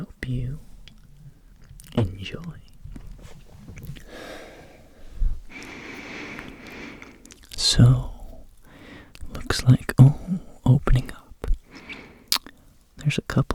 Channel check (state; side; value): identical; both; correlation 1.00